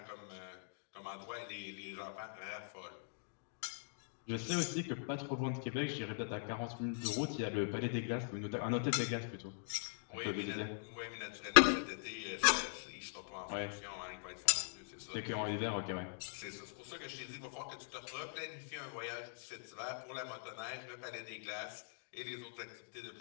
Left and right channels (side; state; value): right; silent; digital silence